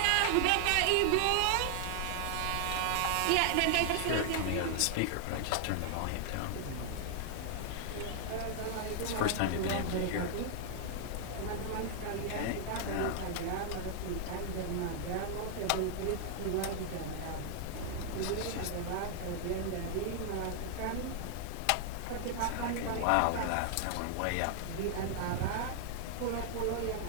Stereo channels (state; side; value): different; both; correlation 0.00